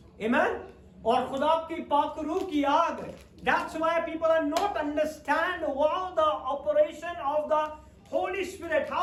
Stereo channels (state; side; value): identical; both; correlation 1.00